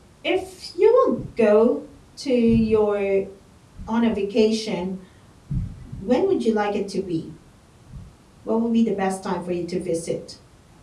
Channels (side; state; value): both; identical; correlation 1.00